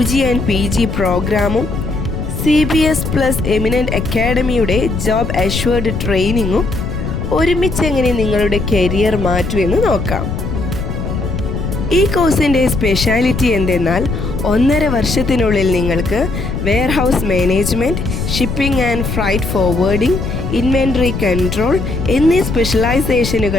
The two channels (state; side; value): noise; left; rumble, 4 dB below the sound